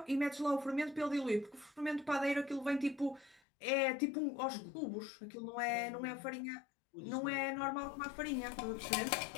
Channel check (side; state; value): right; drops out; at 3.4 s